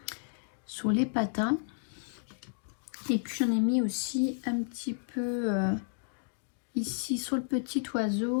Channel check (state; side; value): silent; right; digital silence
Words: patins. Et puis j'en ai mis aussi un petit peu ici sur le petit